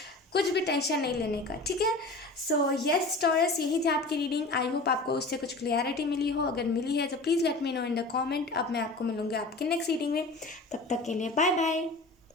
कुछ भी टेंशन नहीं लेने का, ठीक है। सो यस टॉरस, यही थी आपकी रीडिंग। आई होप आपको उससे कुछ क्लियरिटी मिली हो, अगर मिली है तो please let me know in the comment. अब मैं आपको मिलूँगी आपके नेक्स्ट रीडिंग में, तब तक के लिए बाय बाय।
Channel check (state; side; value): quieter; right; 3.1 dB